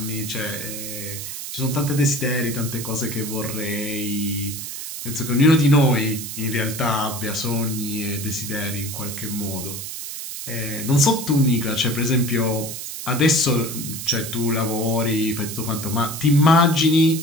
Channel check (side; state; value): right; noise; hiss, 8 dB below the sound